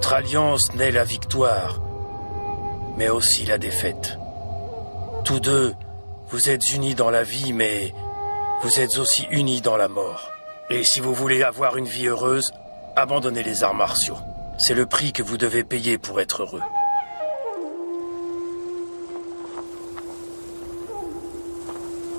alliance naît la victoire, mais aussi la défaite. Tous deux, vous êtes unis dans la vie, mais vous êtes aussi unis dans la mort. Et si vous voulez avoir une vie heureuse, abandonnez les arts martiaux. C'est le prix que vous devez payer pour être heureux.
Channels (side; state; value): both; inverted; correlation -1.00